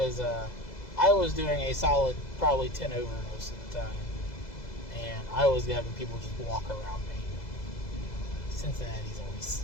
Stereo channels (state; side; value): late; right; 2.0 ms